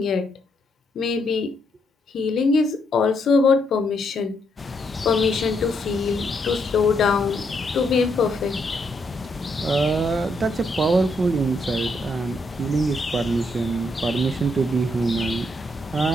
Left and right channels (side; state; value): both; normal; correlation 0.76